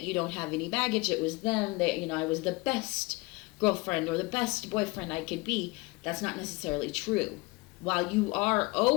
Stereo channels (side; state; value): right; quieter; 24.6 dB